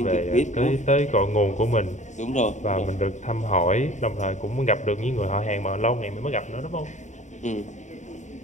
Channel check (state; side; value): late; right; 0.34 ms